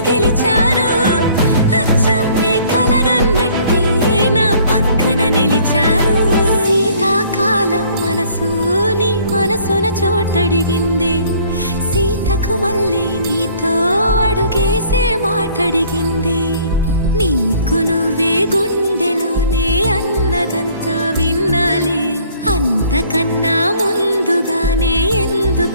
గెలిచారు అచ్చం నీ కలగన్నట్టే నా పక్కన నిలిచారు శీతాకాలం మనసు నీ మనసున చోటడిగింది సీతకు మళ్ళీ నీతో అడుగేసే మాటడిగింది నీకు నువ్వే గుండెలోనే అన్నదంతా విన్నాలే అంతకన్నా ముందుగానే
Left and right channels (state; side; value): inverted; both; correlation -0.57